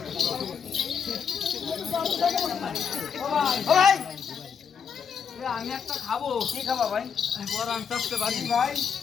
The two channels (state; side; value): quieter; right; 6.9 dB